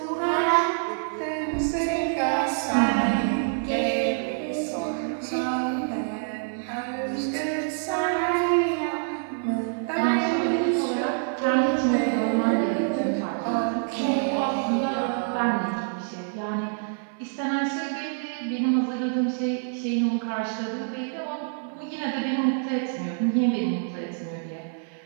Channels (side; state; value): left; silent; 56 dB below the other